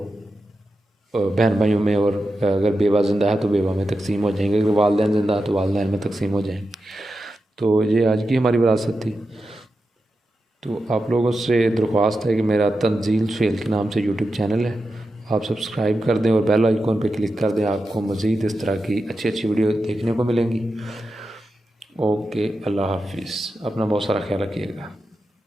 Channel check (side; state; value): both; normal; correlation 0.90